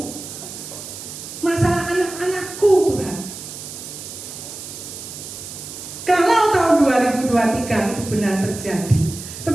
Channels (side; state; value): right; noise; hiss, 11 dB below the sound